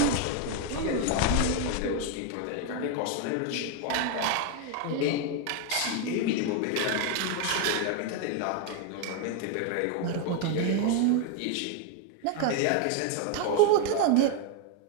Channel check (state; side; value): different; both; correlation 0.01